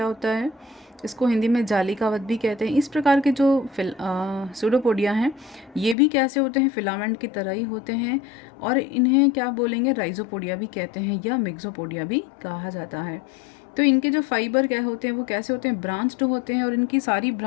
होता है, इसको हिंदी में जालिकावत भी कहते हैं। इस प्रकार के जो स्यूडोपोडिया हैं ये भी कैसे होते हैं, फिलामेंट की तरह ही होते हैं। और इन्हें क्या बोलेंगे, राइजोपोडिया भी कहते हैं या मिक्सोपोडिया भी कहा जाता है। तो इनके जो फाइबर क्या होते हैं वो कैसे होते हैं, ब्रांच्ड होते हैं। और इनकी सारी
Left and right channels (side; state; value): right; drops out; at 6.0 s